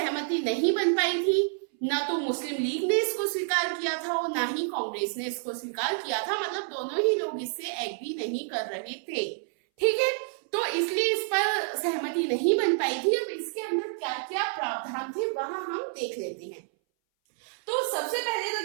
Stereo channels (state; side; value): silent; left; 59 dB below the other